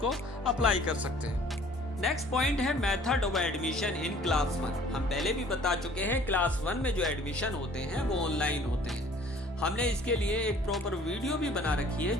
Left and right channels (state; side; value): normal; both; correlation 0.53